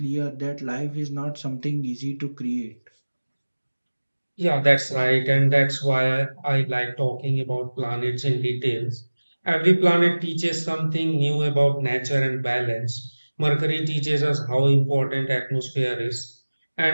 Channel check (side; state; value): both; inverted; correlation -1.00